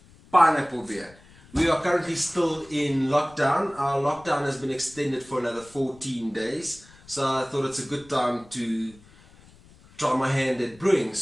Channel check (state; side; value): noise; left; rumble, 25 dB below the sound